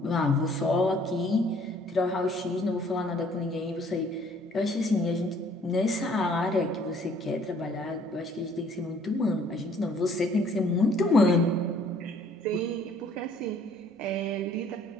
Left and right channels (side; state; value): both; normal; correlation 0.59